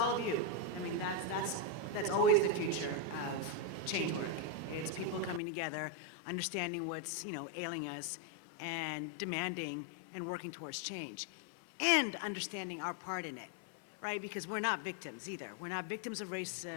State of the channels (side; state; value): right; drops out; at 5.4 s